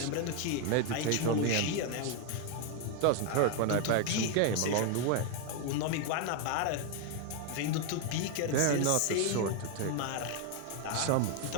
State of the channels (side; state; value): both; different; correlation 0.01